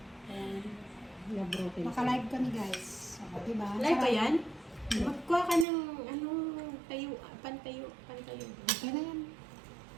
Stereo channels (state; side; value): drops out; left; at 5.7 s